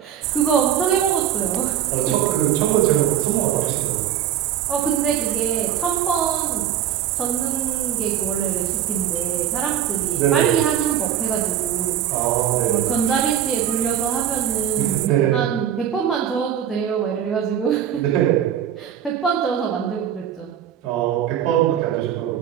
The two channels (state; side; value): quieter; left; 9.9 dB